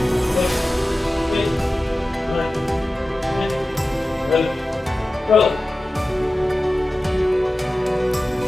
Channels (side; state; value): both; normal; correlation 0.95